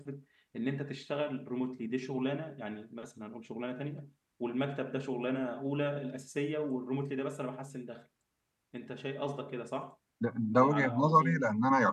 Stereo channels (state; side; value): identical; both; correlation 1.00